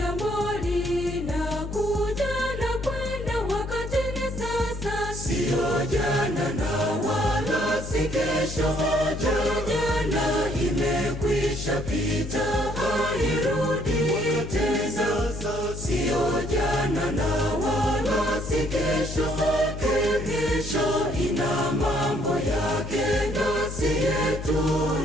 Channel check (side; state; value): left; noise; hum, 8 dB below the sound